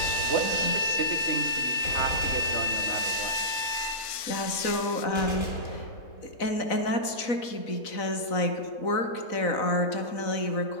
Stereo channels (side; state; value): right; late; 4.0 ms